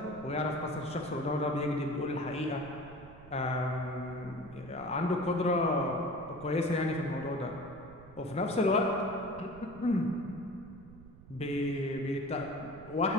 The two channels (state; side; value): noise; right; rumble, 19 dB below the sound